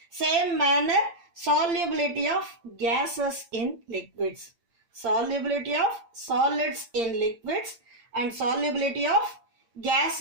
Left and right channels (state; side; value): late; left; 8.7 ms